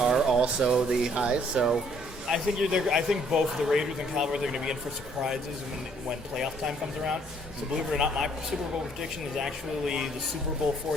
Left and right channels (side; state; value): both; normal; correlation 0.63